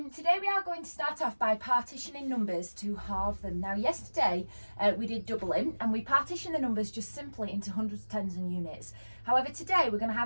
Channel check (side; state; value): both; inverted; correlation -1.00